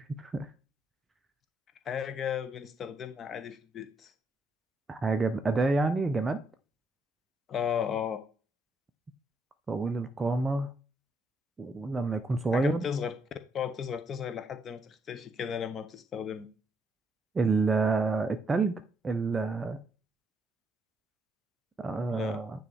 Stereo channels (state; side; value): normal; both; correlation 0.75